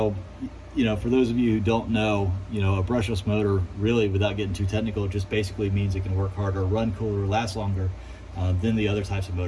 you know, for those of you who don't know, you know, a brushless motor, really, without getting too technical, just basically means it can work harder, run cooler, last longer than the other types of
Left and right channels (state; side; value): identical; both; correlation 1.00